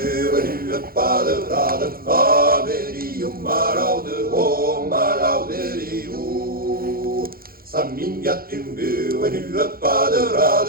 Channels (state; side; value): late; left; 0.43 ms